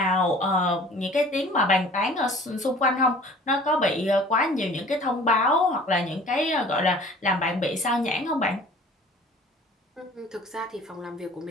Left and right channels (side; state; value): both; normal; correlation 0.48